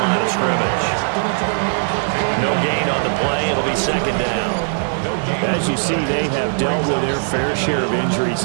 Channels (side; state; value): left; silent; 67 dB below the other